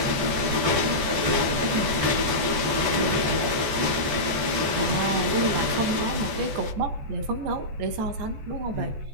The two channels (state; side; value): late; left; 14 ms